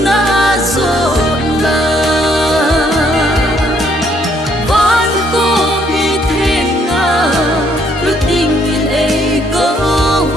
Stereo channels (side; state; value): both; normal; correlation 0.68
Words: na so na van ko mi thenga lu ting in e ko